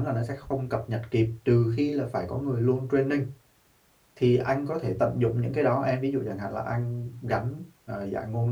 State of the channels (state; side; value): identical; both; correlation 1.00